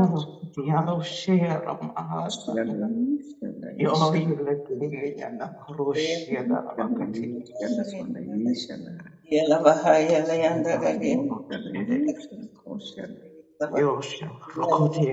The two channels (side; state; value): both; identical; correlation 1.00